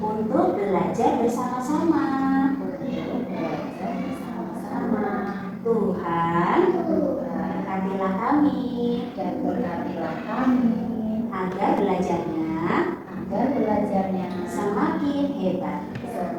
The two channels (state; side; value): identical; both; correlation 1.00